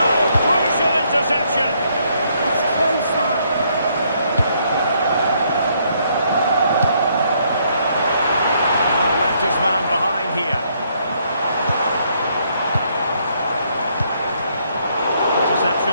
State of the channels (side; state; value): both; inverted; correlation -0.71